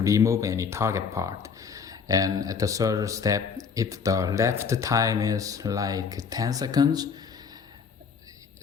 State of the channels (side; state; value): right; quieter; 5.9 dB